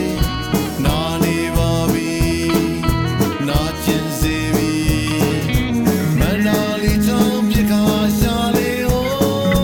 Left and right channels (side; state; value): both; identical; correlation 1.00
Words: းနာနေပါပြီနာကျင်စေပြီမနာလီချောင်းပြခါရှာလေဟို